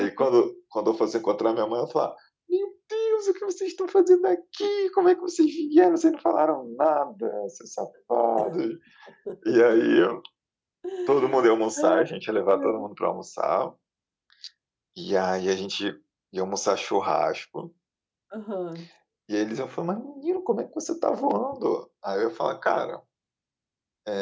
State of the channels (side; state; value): both; identical; correlation 1.00